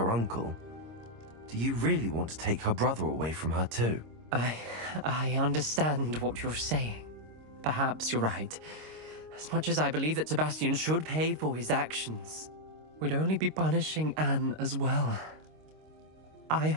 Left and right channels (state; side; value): late; left; 26 ms